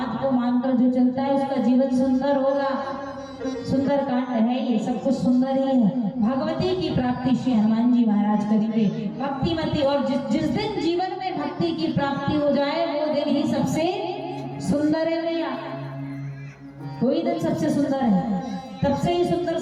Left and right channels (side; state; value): both; identical; correlation 1.00